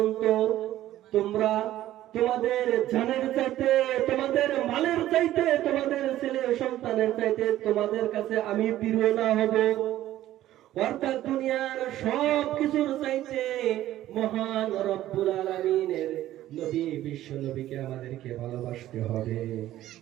তোমরা তোমাদের জানের চাইতে, তোমাদের মালের চাইতে, তোমাদের ছেলে সন্তানের চাইতে তোমাদের কাছে আমি প্রিয় না হব। অর্থাৎ দুনিয়ার সব কিছুর চাইতে মহান রব্বুল আলামিনের নবী বিশ্ব নবীকে আমাদেরকে ভালোবাসতে হবে।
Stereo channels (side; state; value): left; quieter; 13.8 dB